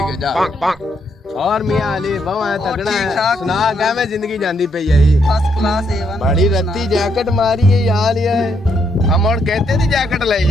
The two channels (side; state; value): both; normal; correlation 0.75